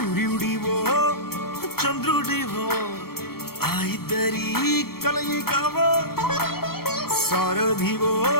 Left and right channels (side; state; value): right; late; 0.95 ms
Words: చంద్రుడివో ఆ ఇద్దరి కలయికవో. సారథివో